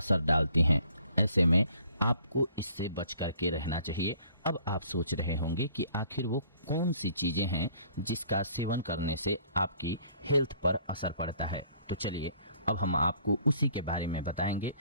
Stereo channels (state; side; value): inverted; both; correlation -0.57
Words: डालती हैं। ऐसे में आपको इससे बच करके रहना चाहिए। अब आप सोच रहे होंगे कि आखिर वो कौन सी चीज़ें हैं जिसका सेवन करने से आपकी हेल्थ पर असर पड़ता है। तो चलिए अब हम आपको उसी के बारे में बताएंगे।